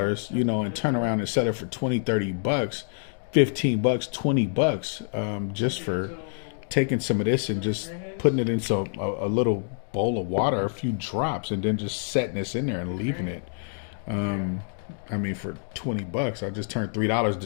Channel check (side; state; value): right; silent; digital silence